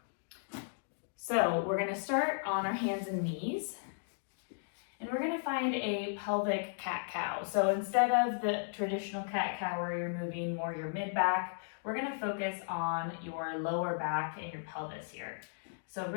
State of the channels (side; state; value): right; silent; digital silence